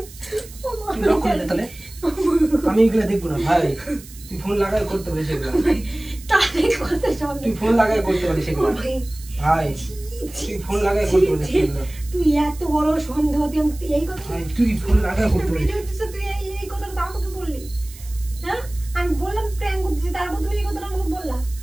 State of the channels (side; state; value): right; noise; hiss, 19 dB below the sound